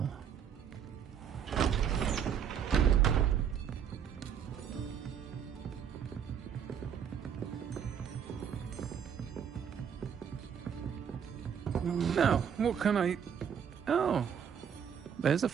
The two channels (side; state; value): left; quieter; 8.0 dB